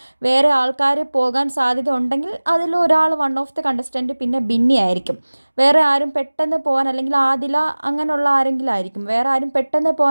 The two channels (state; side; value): inverted; both; correlation -1.00